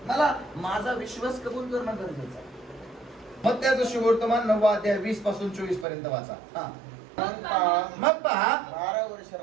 मला माझा विश्वास कबूल करणं गरजेचं आहे. मग त्याचं सुवर्तमान 9 अध्याय 20 पासून 24 पर्यंत वाचा. मग पहा, 12 वर्ष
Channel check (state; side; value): drops out; left; at 5.9 s